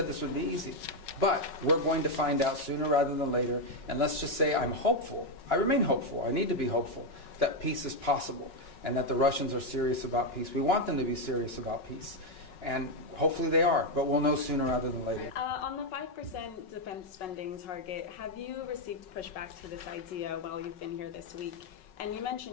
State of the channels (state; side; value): late; right; 5.4 ms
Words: this would be easy. But we're going to find out sooner rather than later. And let's just say I'm hopeful. I remain hopeful. I need to be hopeful that peace is possible and that the Russians are serious about peace. We want them to be serious about peace. And hopefully they are. But we'll know sooner rather than later. On the 5% defense spending target, have you received pushback to this idea while you've been here this week? And you